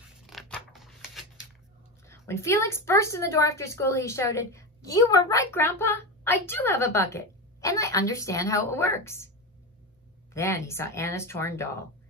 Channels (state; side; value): normal; both; correlation 0.18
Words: When Felix burst in the door after school, he shouted, You were right, Grandpa. I do have a bucket, and I understand how it works. Then he saw Anna's torn doll.